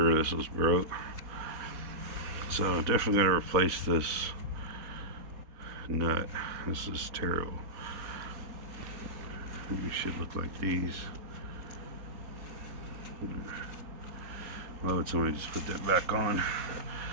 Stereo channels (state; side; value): late; left; 4.2 ms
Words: this was broke. So definitely gotta replace this nut. This is terrible. You should look like these. Why would somebody just put that back on?